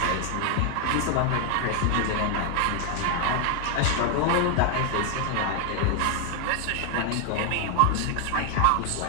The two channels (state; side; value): different; both; correlation 0.01